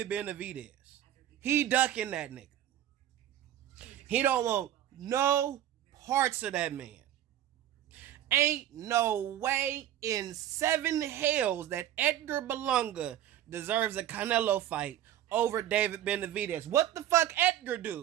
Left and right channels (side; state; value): left; quieter; 12.0 dB